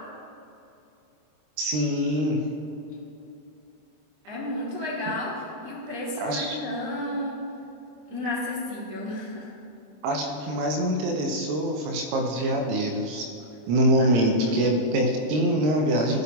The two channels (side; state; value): left; late; 26 ms